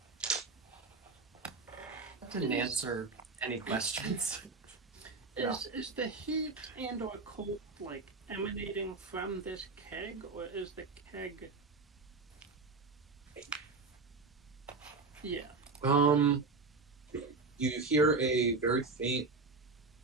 That didn't answer any questions. Is the heat and or cold like emanating from this keg, or is the keg? Yeah. You hear a very faint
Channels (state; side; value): quieter; left; 4.0 dB